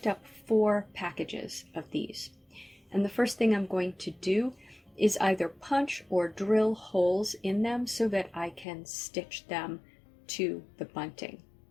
up 4 packages of these. And the first thing I'm going to do is either punch or drill holes in them so that I can stitch them to the bunting.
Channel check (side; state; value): right; drops out; at 8.7 s